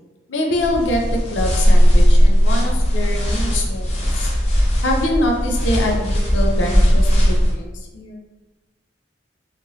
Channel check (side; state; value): both; normal; correlation 0.89